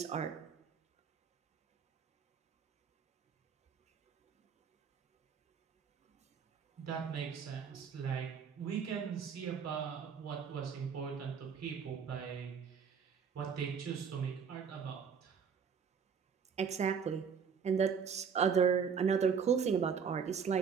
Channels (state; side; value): quieter; left; 6.6 dB